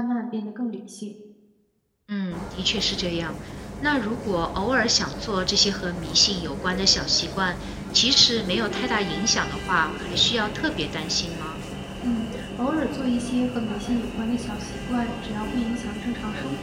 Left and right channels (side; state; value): both; identical; correlation 1.00